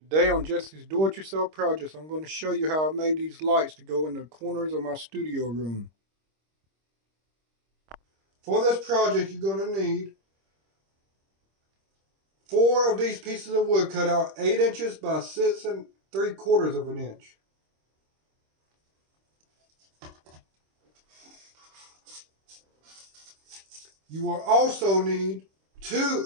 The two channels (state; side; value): late; left; 26 ms